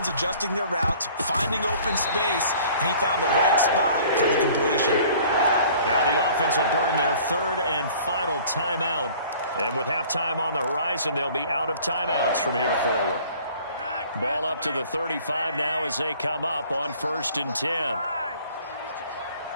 adjusting their routes, finding open space, and he found the right spot for the completion. Now the offense will burn their third and final timeout. And with halftime on the horizon, they'll be out of timeouts from here forward. Ball up to the 35 now as they come up on 1st and 10.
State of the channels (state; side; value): inverted; both; correlation -0.51